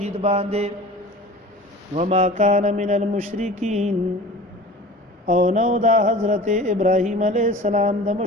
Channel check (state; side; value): normal; both; correlation 0.39